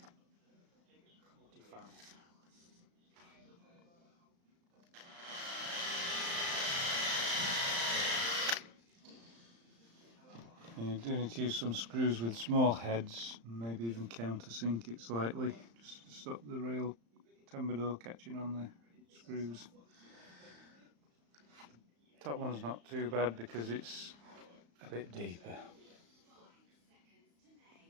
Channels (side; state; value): left; late; 35 ms